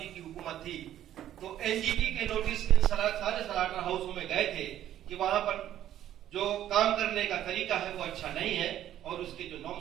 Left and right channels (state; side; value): quieter; left; 11.8 dB